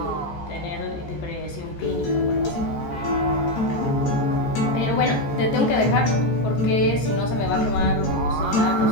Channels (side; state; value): right; late; 14 ms